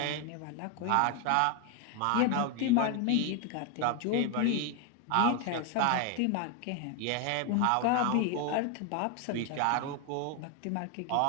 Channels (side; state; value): both; different; correlation 0.01